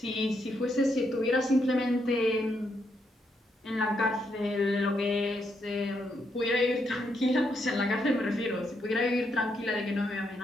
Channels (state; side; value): normal; both; correlation 0.78